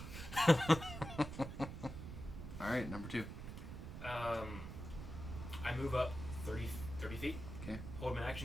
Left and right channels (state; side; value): noise; right; rumble, 8 dB below the sound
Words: right? Alright, number 2. I move up 30 feet. Okay. Hold my